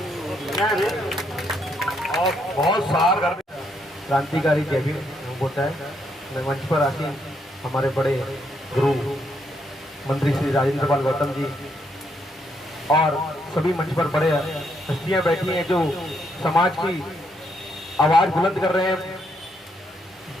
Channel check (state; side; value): normal; both; correlation 0.75